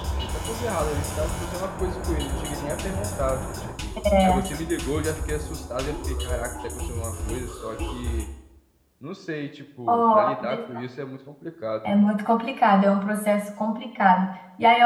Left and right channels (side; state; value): both; identical; correlation 1.00